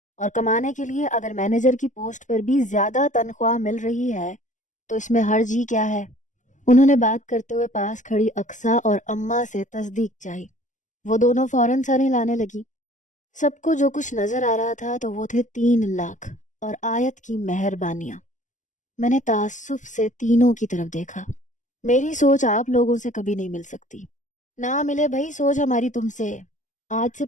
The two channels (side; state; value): right; late; 0.36 ms